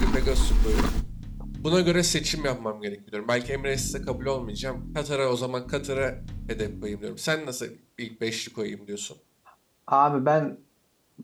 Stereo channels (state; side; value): identical; both; correlation 1.00